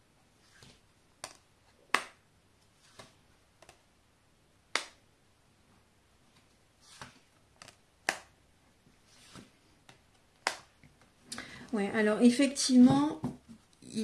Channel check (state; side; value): identical; both; correlation 1.00